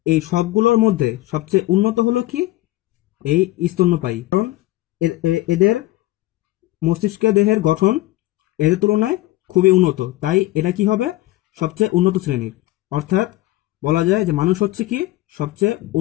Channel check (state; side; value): quieter; right; 17.2 dB